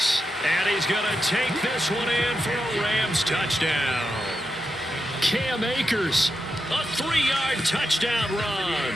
And he's going to take this one in for a Rams touchdown. Cam Akers, a 3-yard touchdown run.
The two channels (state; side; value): normal; both; correlation 0.87